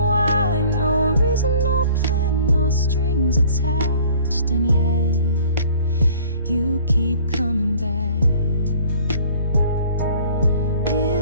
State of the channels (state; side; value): inverted; both; correlation -0.52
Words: No reason, no plan, no strings attached, and yet you keep coming back.